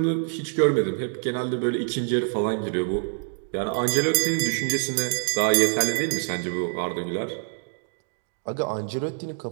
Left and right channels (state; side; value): silent; left; 61 dB below the other